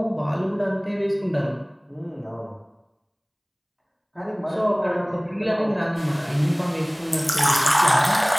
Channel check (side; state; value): both; identical; correlation 1.00